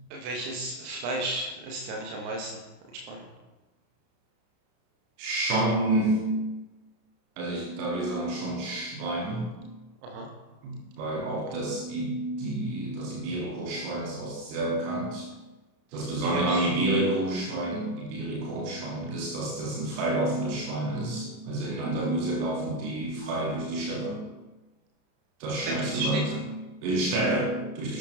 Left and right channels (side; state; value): left; late; 33 ms